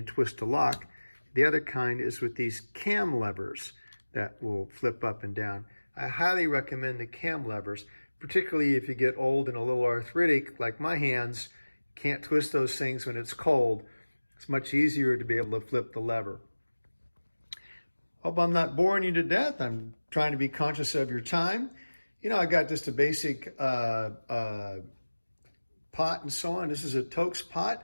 twist the lock. The other kind is with these cam levers that will flip up and down. I highly recommend the cam levers, particularly if you get old and a little arthritic, like my hands. Can't twist those things when it's cold. It's much easier to be able to flip the lever. Hope I'm not boring you to death. I'm trying to be conscious of your time. You know, I got just a basic pot and so on. This is a Toaks pot.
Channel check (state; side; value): inverted; both; correlation -1.00